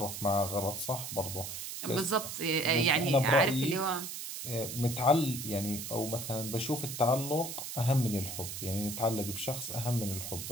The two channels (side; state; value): right; noise; hiss, 7 dB below the sound